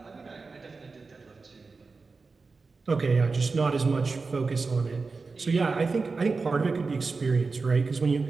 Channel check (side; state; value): left; quieter; 4.2 dB